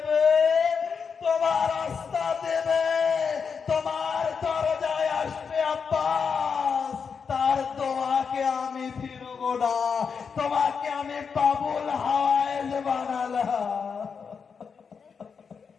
তোমার রাস্তা দেবে, তোমার দরজায় আসবে আব্বাস, তার দোয়াকে আমি ফিরবো না, তোমাকে আমি বাবুল হাওয়ায়েস বানালাম।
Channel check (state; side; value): quieter; right; 6.0 dB